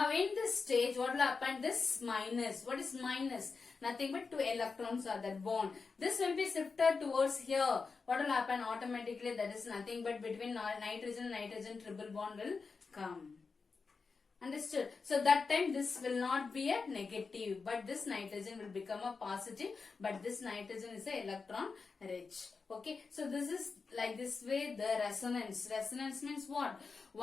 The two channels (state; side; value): quieter; right; 4.7 dB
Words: in this stage, what will happen? This minus. What is minus? Nothing but 2 electrons are that bond. This will be shifted towards here. What will happen? Automatically, that is nothing but between nitrogen and nitrogen triple bond will come. Understood? So that time this will not be a negative, but this nitrogen will become a positive, but this nitrogen is a electron rich. Okay, so this is like this way the resonance. Resonance means what?